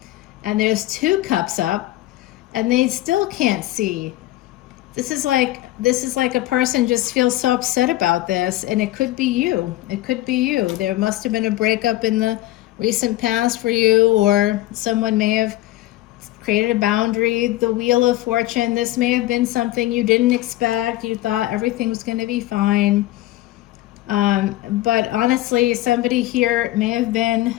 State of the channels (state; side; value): quieter; right; 16.3 dB